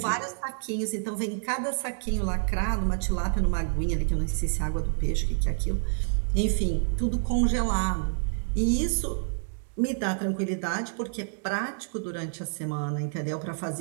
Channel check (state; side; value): silent; left; digital silence